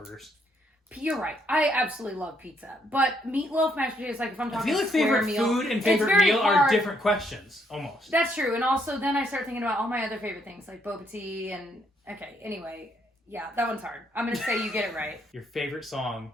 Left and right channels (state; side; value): normal; both; correlation 0.72